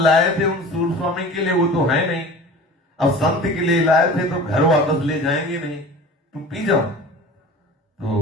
लाए थे उन सूर स्वामी के लिए, वो तो है नहीं, अब संत के लिए लाए थे तो घर वापस ले जाएंगे नहीं, तुम पी जाओ।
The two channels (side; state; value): both; normal; correlation 0.39